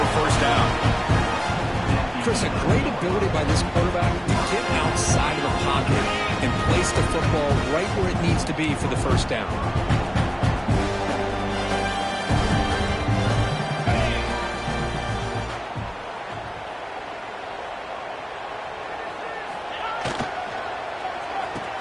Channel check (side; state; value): both; identical; correlation 1.00